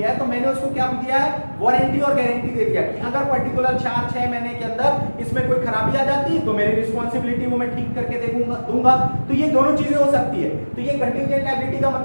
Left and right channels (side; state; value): both; inverted; correlation -1.00